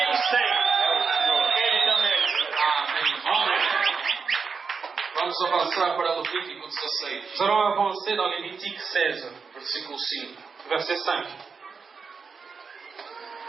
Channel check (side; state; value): left; quieter; 5.3 dB